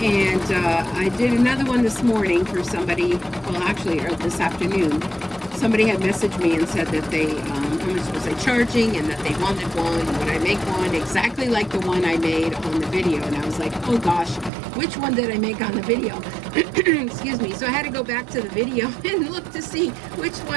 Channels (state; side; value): drops out; left; at 14.5 s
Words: And I did another one this morning for somebody, well actually this afternoon. Somebody had messaged me and said that they, how much was I charging, and that they wanted one, would I make one exactly like the one I made on the video. And I was like, oh gosh, which one did I make on the video? Excuse me. So I had to go back to the video and look to see which